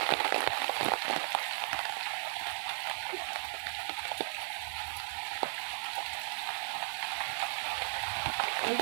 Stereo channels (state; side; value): silent; left; digital silence